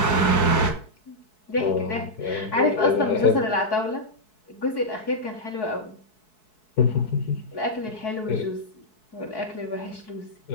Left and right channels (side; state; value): right; late; 4.7 ms